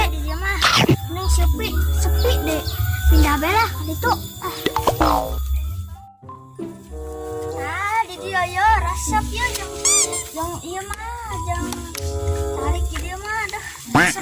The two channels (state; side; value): identical; both; correlation 1.00